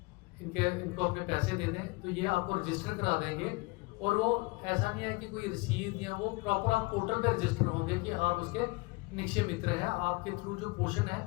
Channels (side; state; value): right; quieter; 25.1 dB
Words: इनको अपने पैसे दे दें तो ये आपको रजिस्टर करा देंगे। और वो ऐसा नहीं है कि कोई रसीद या वो प्रॉपर आप पोर्टल पे रजिस्टर होंगे कि आप उसके निक्षय मित्र हैं, आपके थ्रू जो पोषण है